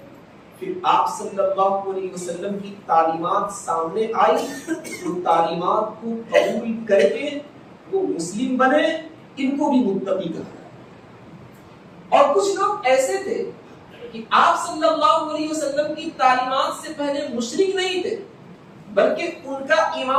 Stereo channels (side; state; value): both; identical; correlation 1.00